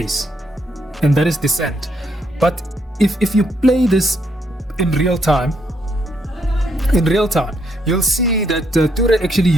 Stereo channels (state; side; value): normal; both; correlation 0.75